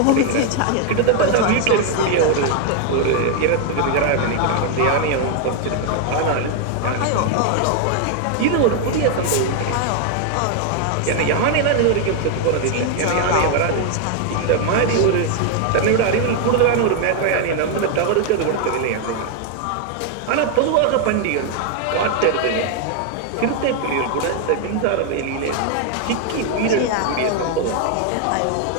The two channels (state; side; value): different; both; correlation 0.00